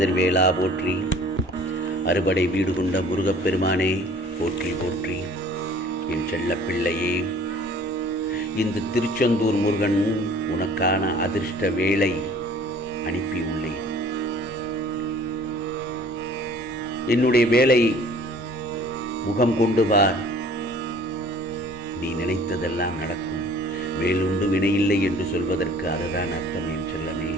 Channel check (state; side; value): normal; both; correlation 0.51